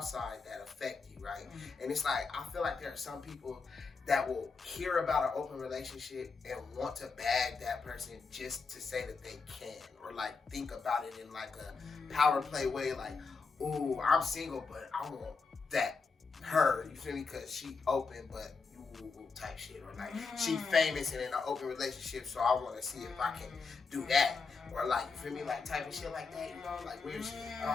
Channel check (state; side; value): quieter; right; 4.7 dB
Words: that affect you, right? And it's like, I feel like there are some people that will hear about an open relationship and want to bag that person just to say that they can, or like think about it in like a power play way, like, ooh, I'm single, but I want that her, you feel me? Because she open, but you type shit, or like she famous and in an open relationship, so I want to see if I can do that. Or like, you feel me, like type of shit like that, you know, like weird shit. I